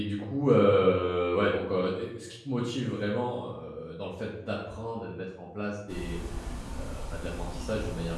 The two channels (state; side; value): identical; both; correlation 1.00